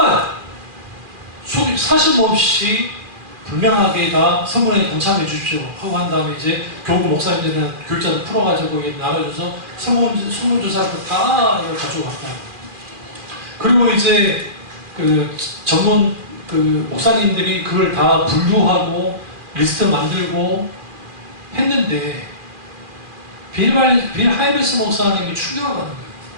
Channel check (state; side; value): late; left; 2.4 ms